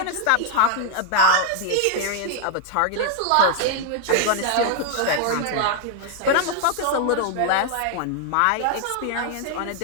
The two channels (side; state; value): both; different; correlation 0.00